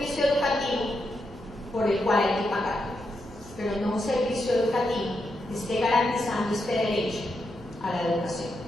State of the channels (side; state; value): both; normal; correlation 0.83